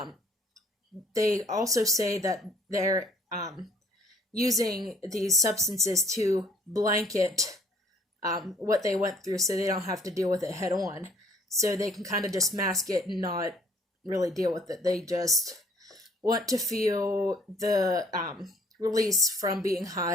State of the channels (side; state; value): both; normal; correlation 0.59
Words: They also say that they're using these substances to blanket what they went through so they don't have to deal with it head on. So they can kind of just mask it and not really deal with it. They just want to feel the release from being